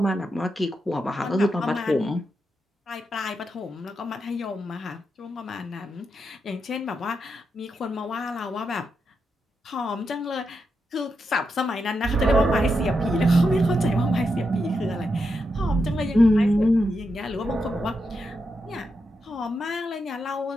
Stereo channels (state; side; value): normal; both; correlation 0.85